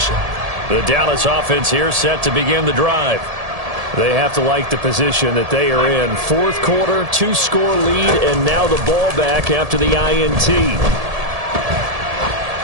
The Dallas offense here set to begin the drive. They have to like the position that they are in. Fourth quarter, 2-score lead, and now the ball back after the INT.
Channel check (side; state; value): left; late; 1.7 ms